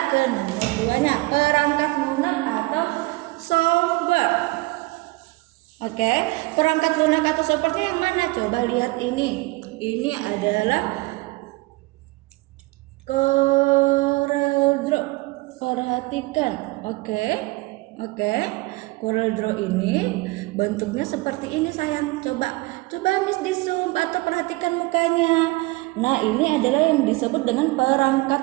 ke nomor 2-nya, perangkat lunak atau software. Oke, perangkat lunak atau software yang mana? Coba lihat ini. Ini adalah CorelDRAW. Perhatikan. Oke. CorelDRAW ini bentuknya seperti ini sayang. Coba Miss di zoom atau perhatikan mukanya. Nah, ini adalah yang disebut dengan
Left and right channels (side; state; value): left; quieter; 23.2 dB